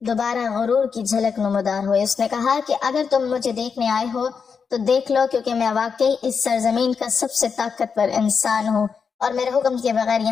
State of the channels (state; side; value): quieter; right; 5.9 dB